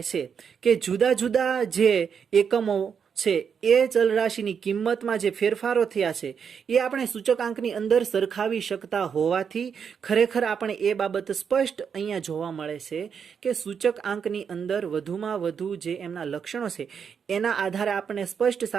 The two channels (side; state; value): left; quieter; 6.9 dB